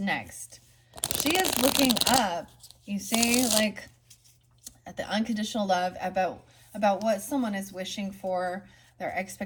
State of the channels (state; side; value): identical; both; correlation 1.00